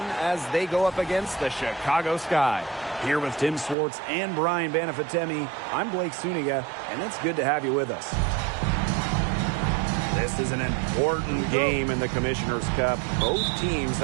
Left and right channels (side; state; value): left; drops out; at 3.8 s